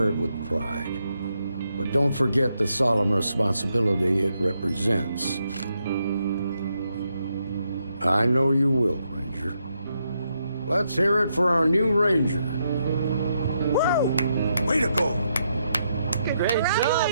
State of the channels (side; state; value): both; inverted; correlation -0.80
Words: it with pride. But don't forget the solemn responsibility it represents. I know you will, Ranger. Let's hear it for our new Ranger. Woo! Way to go! Great job,